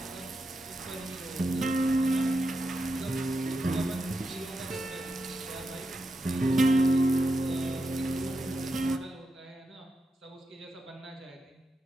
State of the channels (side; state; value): both; normal; correlation 0.87